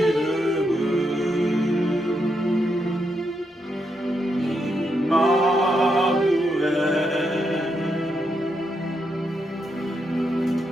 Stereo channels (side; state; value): both; normal; correlation 0.81